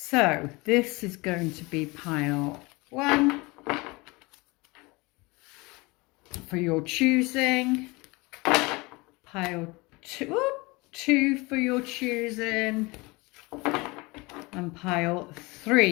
this is going to be pile 1 for your choosing. Pile 2 for your choosing, and pile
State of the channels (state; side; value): quieter; right; 24.7 dB